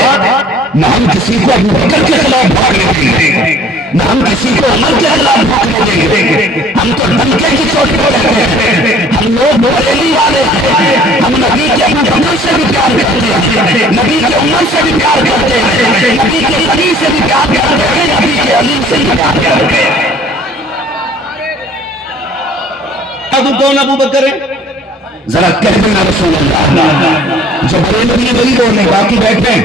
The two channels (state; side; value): normal; both; correlation 0.54